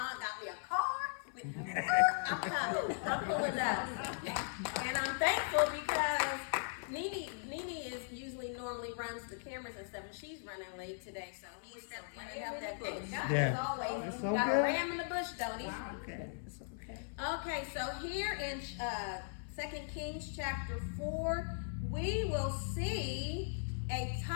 me a car. I'm coming. I'm pulling up. And I'm thankful because Nene normally runs the cameras and stuff, and she's running late today, so he stepped in and helped that bush. Yeah. As always, It's so got good. a ram in the bush, don't he? Okay, it's okay. Okay, so here in 2 Kings chapter 4, we will see a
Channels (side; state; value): right; silent; 52 dB below the other